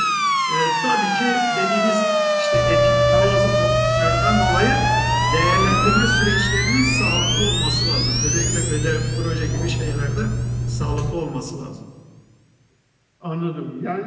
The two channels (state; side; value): identical; both; correlation 1.00